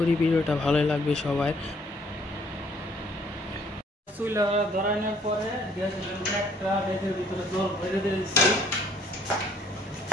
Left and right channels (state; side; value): normal; both; correlation 0.62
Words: ভিডিওটা ভালোই লাগবে সবাই। চুলা ধরানোর পরে একটা রেখের ভিতরে জল ভরে দিয়েছি